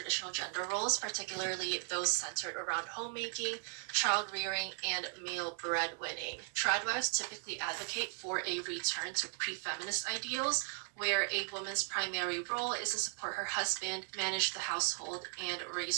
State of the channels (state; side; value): silent; left; 53 dB below the other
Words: gender roles, particularly those centered around homemaking, child rearing, and male breadwinning. Tradwives typically advocate for a return to pre-feminist ideals, where a woman's primary role is to support her husband, manage the household, and